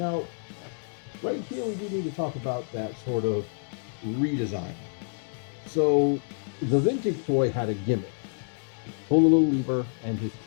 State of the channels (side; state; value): right; silent; 59 dB below the other